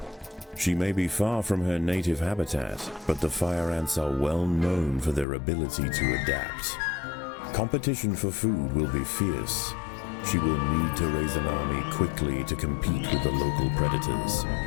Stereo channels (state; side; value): drops out; right; at 5.2 s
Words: She may be far from her native habitat, but the fire ants are well known for their ability to adapt. Competition for food will be fierce. She will need to raise an army quickly to compete with the local predators.